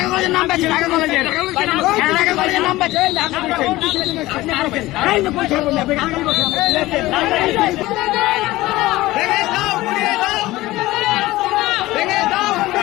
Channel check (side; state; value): right; quieter; 18.1 dB